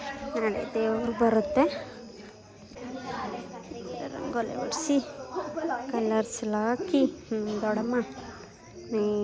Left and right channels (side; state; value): both; identical; correlation 1.00